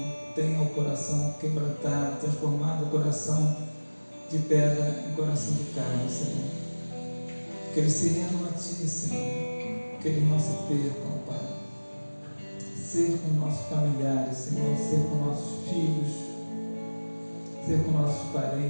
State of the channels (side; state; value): both; inverted; correlation -1.00